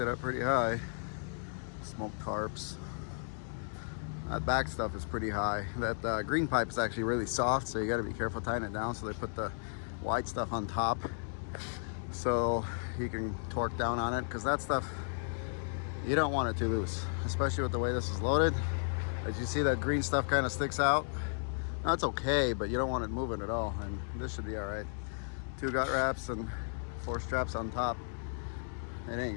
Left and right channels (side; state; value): right; silent; digital silence